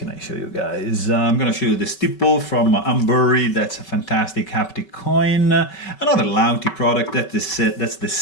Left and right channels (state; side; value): late; right; 5.3 ms